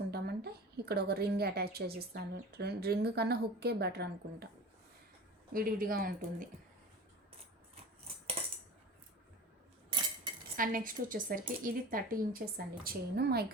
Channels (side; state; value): both; normal; correlation 0.36